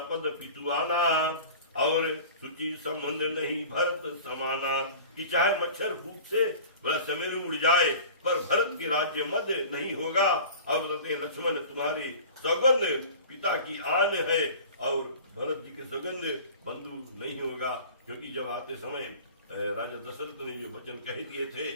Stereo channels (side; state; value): both; inverted; correlation -0.40